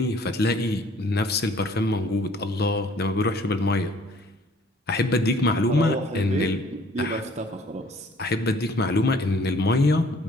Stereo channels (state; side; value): normal; both; correlation 0.56